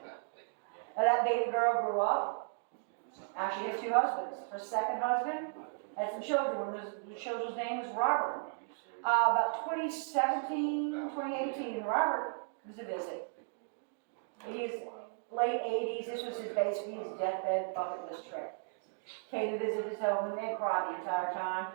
Now that baby girl grew up. Actually had 2 husbands. Her second husband had some children. One of the children's name was Robert. About 2018, Robert was a visit. He's late 80s. This was basically his deathbed bucket list trip. Came to visit his home and they cried the entire time.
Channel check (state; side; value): silent; left; digital silence